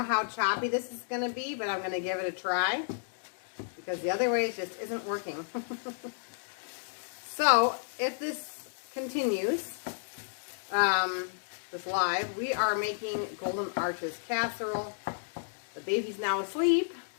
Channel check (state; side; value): silent; right; digital silence